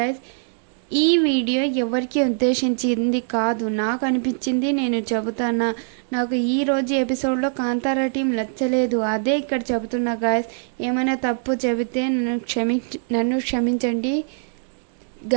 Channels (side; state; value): left; silent; digital silence